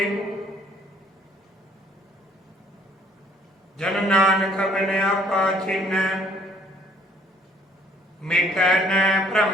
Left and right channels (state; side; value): normal; both; correlation 0.60